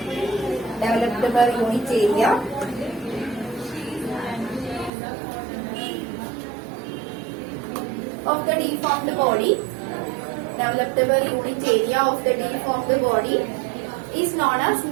Developed per unit area of the deformed body. Developed per unit area of the deformed body is known as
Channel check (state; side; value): drops out; left; at 4.9 s